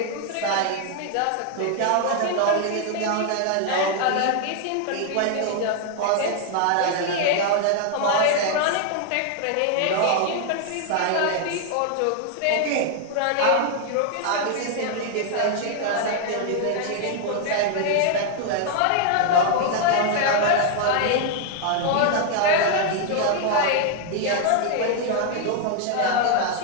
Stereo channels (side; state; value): both; different; correlation 0.00